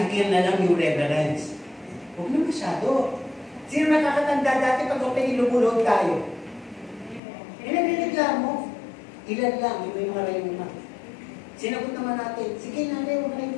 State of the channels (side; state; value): right; drops out; at 7.2 s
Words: na lang yung reverence, huwag na masyado. Sino nakakatanda dati pag okay ilubulog tayo? Inanireklamo. Ilan lang, yung may mga rayuma. Sinagot naman natin, sige nanay, huwag na